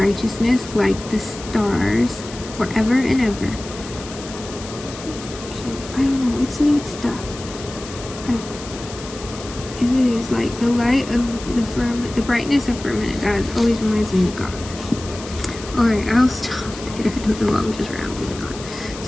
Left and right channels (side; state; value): left; noise; hiss, 14 dB below the sound